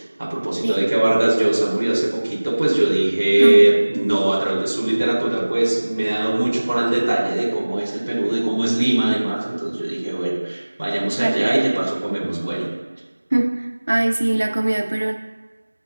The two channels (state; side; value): inverted; both; correlation -1.00